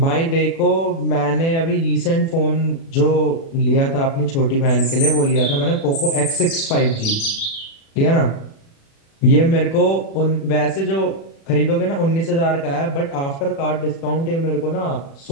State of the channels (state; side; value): late; right; 36 ms